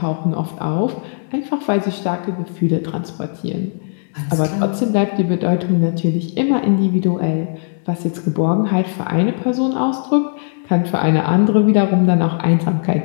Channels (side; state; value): right; silent; digital silence